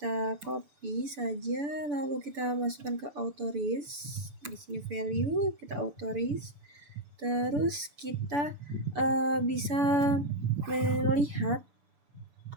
copy saja, lalu kita masukkan ke authorize. Di sini value kita authorize, terus kita bisa melihat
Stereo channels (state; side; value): late; left; 6.9 ms